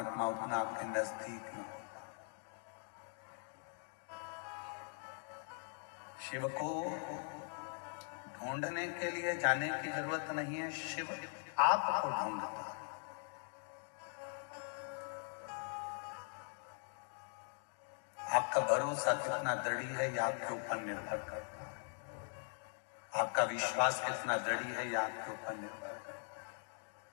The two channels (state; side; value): silent; right; 50 dB below the other